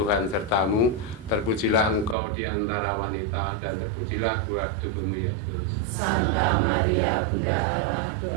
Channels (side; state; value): left; drops out; at 2.1 s